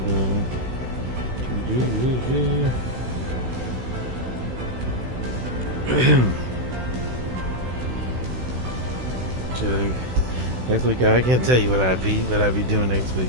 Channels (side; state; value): left; late; 16 ms